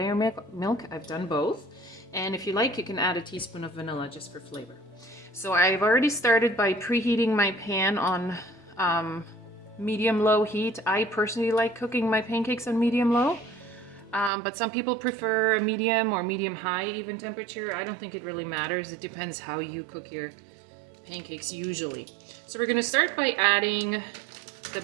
milk. I've done both. And if you like, you can add a teaspoon of vanilla just for flavor. So I've already started by preheating my pan on medium-low heat. I personally like cooking my pancakes on medium-low, but some people prefer a medium or medium-high even temperature. I don't think it really matters. It depends how you cook your pancakes usually. So we're going to start by adding the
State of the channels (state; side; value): drops out; left; at 14.3 s